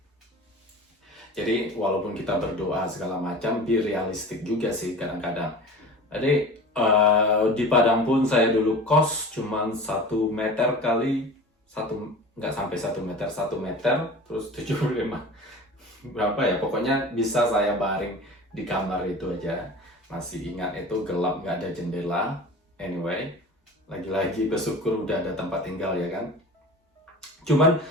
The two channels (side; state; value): both; normal; correlation 0.37